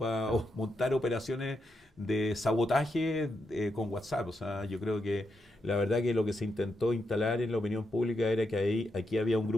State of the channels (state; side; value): normal; both; correlation 0.83